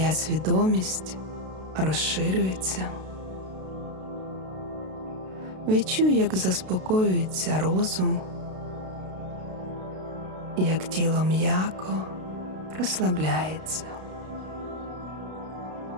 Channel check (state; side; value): late; left; 32 ms